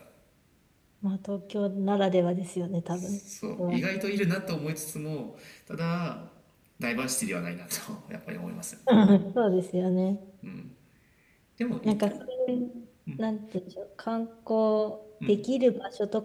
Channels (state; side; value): identical; both; correlation 1.00